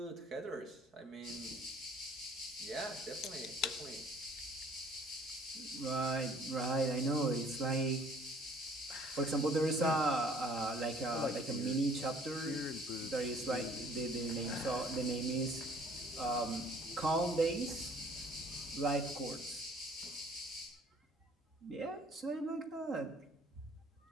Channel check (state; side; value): normal; both; correlation 0.56